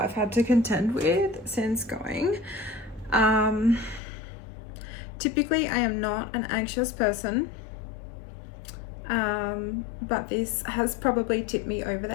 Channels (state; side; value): drops out; right; at 4.0 s